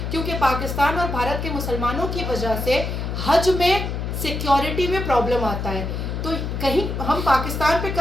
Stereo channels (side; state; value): left; noise; hum, 3 dB below the sound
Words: क्योंकि पाकिस्तान और भारत के मुसलमानों की वजह से हज में सिक्योरिटी में प्रॉब्लम आता है। तो कहीं हम पाकिस्तान पे